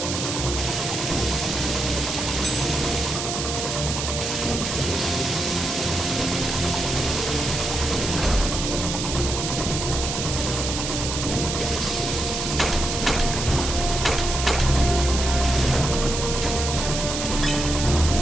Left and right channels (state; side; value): noise; right; hiss, 3 dB below the sound